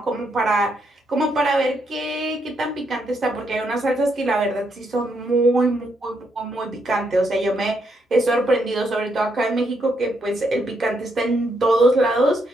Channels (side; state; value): both; normal; correlation 0.77